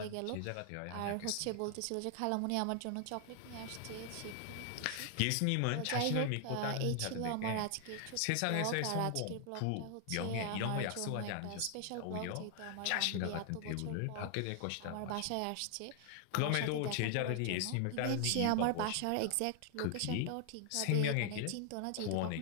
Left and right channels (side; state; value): both; different; correlation 0.00